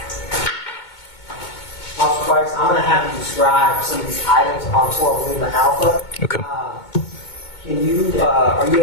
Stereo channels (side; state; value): right; late; 2.2 ms